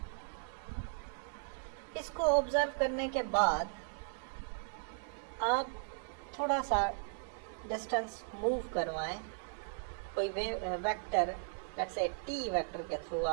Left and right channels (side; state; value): left; silent; digital silence